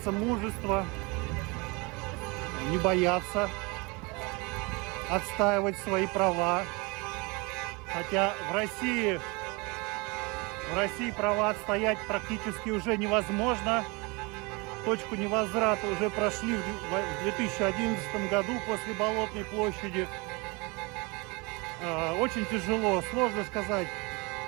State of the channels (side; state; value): left; quieter; 27.8 dB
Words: мужества, не бояться, отстаивать свои права. Хотя в России права отстоять практически уже невозможно. Точку невозврата уже прошли в 2011 году после Болотной площади. Очень тяжело, сложно сказать.